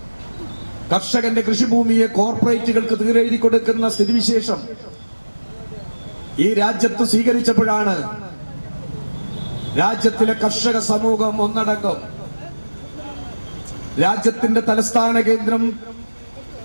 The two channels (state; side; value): inverted; both; correlation -1.00